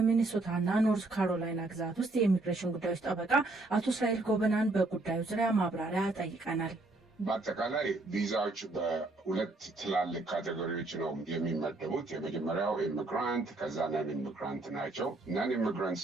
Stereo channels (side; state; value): left; quieter; 3.0 dB